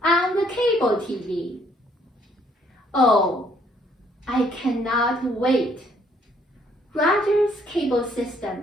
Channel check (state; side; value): normal; both; correlation 0.65